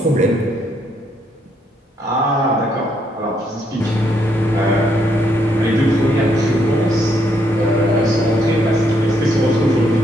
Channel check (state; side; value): normal; both; correlation 0.73